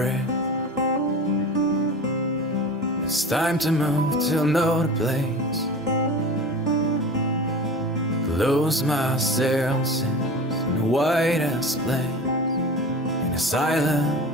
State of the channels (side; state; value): both; normal; correlation 0.34